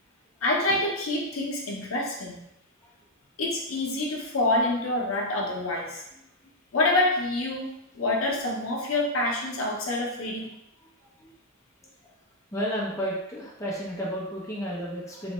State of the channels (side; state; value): both; normal; correlation -0.04